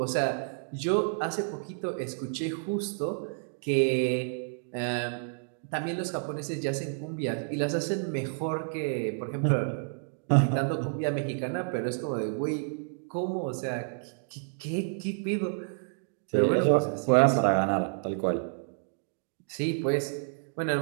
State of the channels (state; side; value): silent; left; digital silence